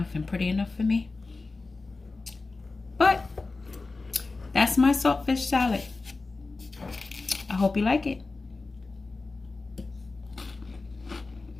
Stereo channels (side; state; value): right; quieter; 3.7 dB